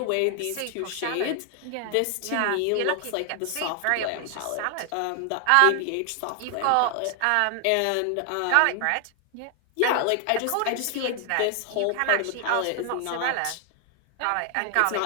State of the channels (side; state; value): both; different; correlation 0.00